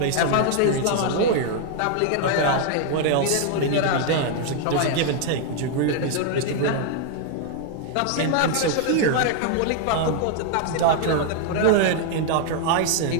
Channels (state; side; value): different; both; correlation 0.00